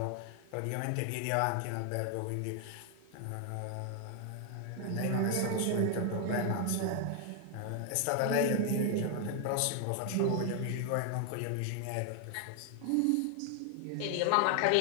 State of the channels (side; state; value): both; different; correlation 0.00